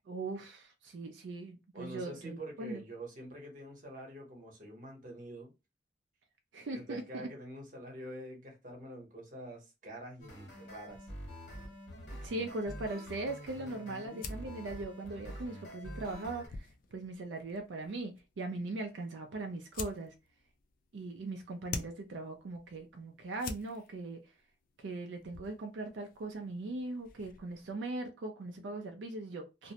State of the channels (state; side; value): normal; both; correlation 0.38